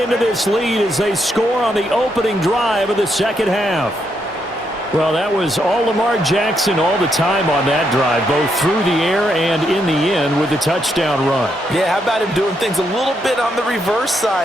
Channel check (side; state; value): both; normal; correlation 0.78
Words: this lead as they score on the opening drive of the second half. Well, that was all Lamar Jackson all the time on that drive, both through the air and in the end with the touchdown run. Yeah, how about him doing things a little bit on the reverse